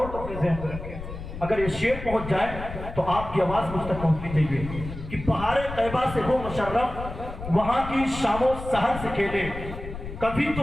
کو اپنے ذہن میں رکھے, اگر یہ شعر پہنچ جائے تو آپ کی آواز مجھ تک پہنچنی چاہیے کہ بہار طیبہ سے ہو مشرف وہاں کی شام و سحر سے کھیلے. کبھی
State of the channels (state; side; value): noise; left; rumble, 10 dB below the sound